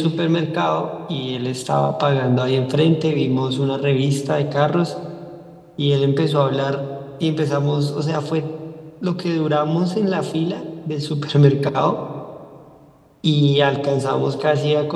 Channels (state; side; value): identical; both; correlation 1.00